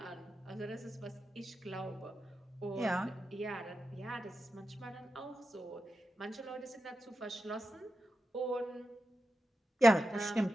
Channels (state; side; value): normal; both; correlation 0.91